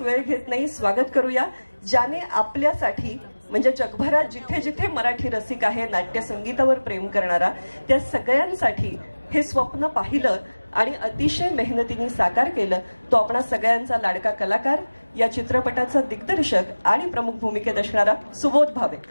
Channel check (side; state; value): both; inverted; correlation -1.00